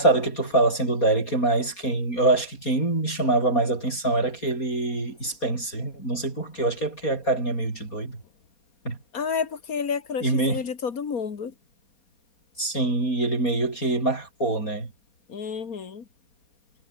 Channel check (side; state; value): right; late; 4.2 ms